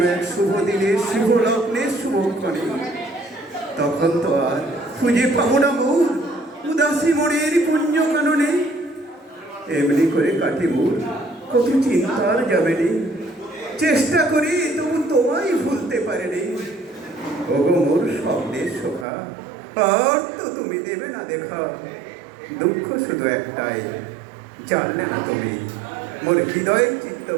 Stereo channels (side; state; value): left; drops out; at 19.1 s